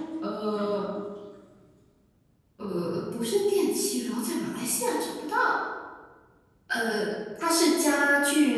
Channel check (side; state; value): both; identical; correlation 1.00